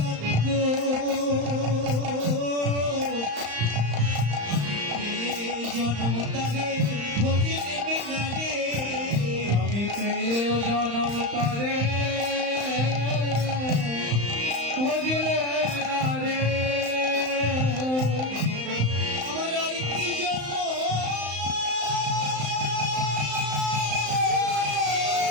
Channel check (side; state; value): left; late; 35 ms